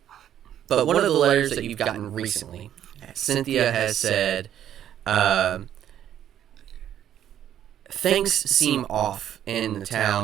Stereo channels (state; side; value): quieter; left; 10.6 dB